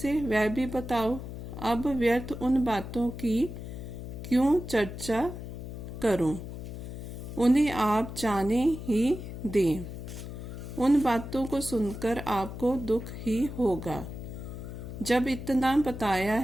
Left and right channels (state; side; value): noise; left; hum, 9 dB below the sound